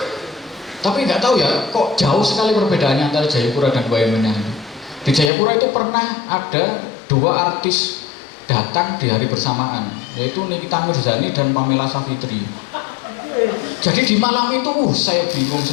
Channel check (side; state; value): right; drops out; at 5.3 s